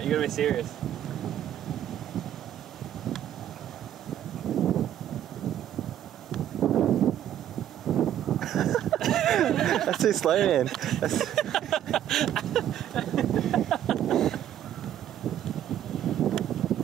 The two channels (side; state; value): left; quieter; 11.1 dB